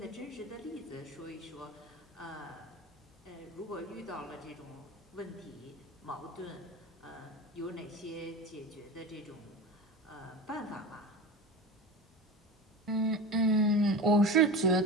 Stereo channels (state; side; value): normal; both; correlation 0.30